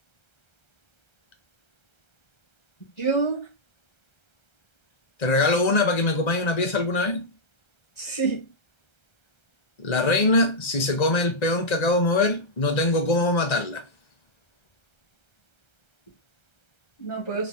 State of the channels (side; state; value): right; late; 1.3 ms